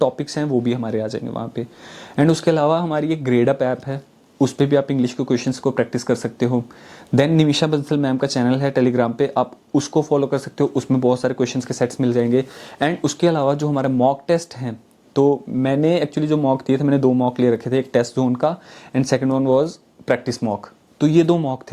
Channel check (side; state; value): both; identical; correlation 1.00